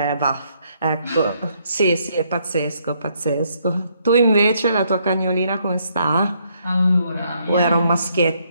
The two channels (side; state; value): both; inverted; correlation -0.72